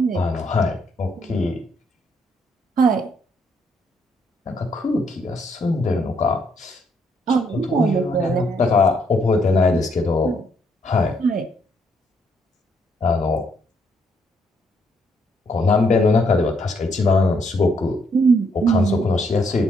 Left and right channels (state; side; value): normal; both; correlation 0.72